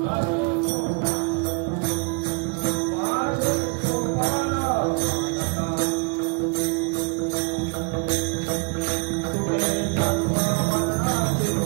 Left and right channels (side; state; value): left; quieter; 35.2 dB